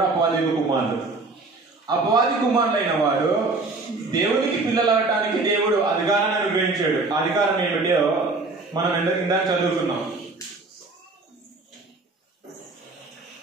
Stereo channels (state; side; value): quieter; left; 3.5 dB